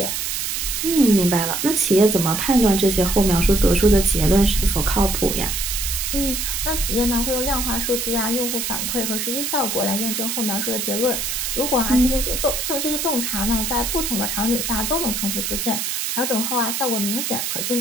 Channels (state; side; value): noise; right; hiss, 2 dB below the sound